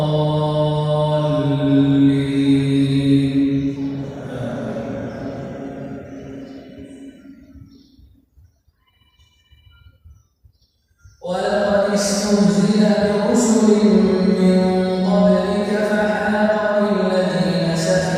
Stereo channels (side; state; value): both; identical; correlation 1.00